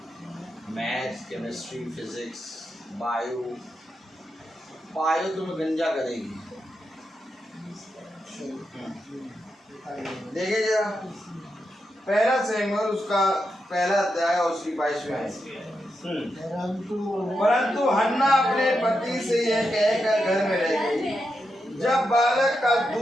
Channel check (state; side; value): normal; both; correlation 0.86